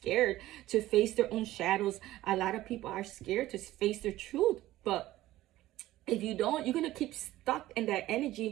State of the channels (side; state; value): left; quieter; 15.7 dB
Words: to face their own shadows. A lot of people are scared to face their truth. But if you don't, you're going to keep stuck in that